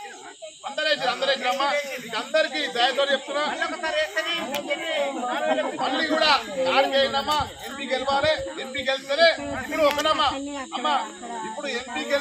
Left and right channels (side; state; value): both; identical; correlation 1.00